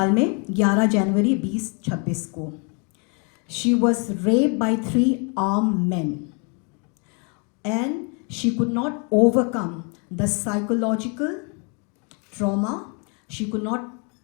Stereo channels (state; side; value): quieter; right; 36.3 dB